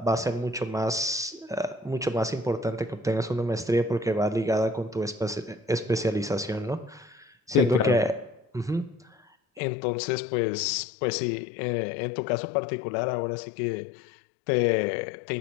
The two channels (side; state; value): right; drops out; at 9.6 s